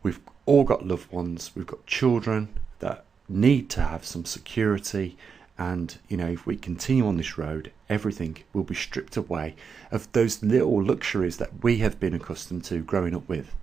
we've all got loved ones, we've got children that need to have some security, and you know, if we continue on this road, everything will be stripped away of those little luxuries that we have been accustomed to growing up with.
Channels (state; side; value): quieter; left; 6.0 dB